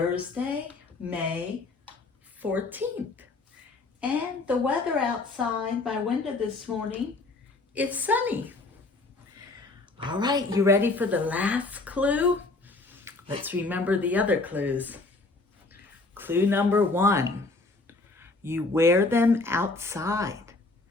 May 14th. And the weather outside my window this morning, it's sunny. All right, you ready for the last clue? Let's remember the other clues. Clue number 1, you wear them outside.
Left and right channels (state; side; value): quieter; right; 3.4 dB